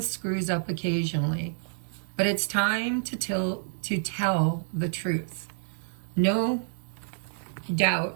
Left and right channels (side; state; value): left; silent; 59 dB below the other